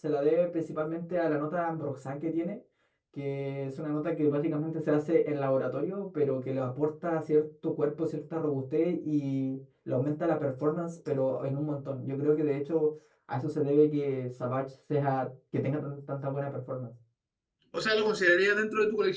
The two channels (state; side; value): identical; both; correlation 1.00